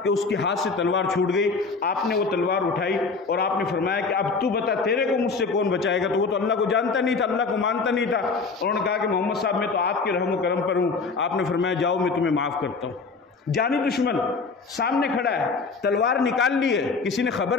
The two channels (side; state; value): right; quieter; 4.5 dB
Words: کہ اس کے ہاتھ سے تلوار چھوٹ گئی۔ آپ نے وہ تلوار اٹھائی اور آپ نے فرمایا کہ اب تو بتا تیرے کو مجھ سے کون بچائے گا؟ تو وہ تو اللہ کو جانتا نہیں تھا، اللہ کو مانتا نہیں تھا۔ انہوں نے کہا کہ محمد صاحب میں تو آپ کے رحم و کرم پر ہوں۔ آپ نے فرمایا جاؤ میں تمہیں معاف کرتا ہوں۔ جانی دشمن سامنے کھڑا ہے، تلوار نکال لی ہے، کسی نے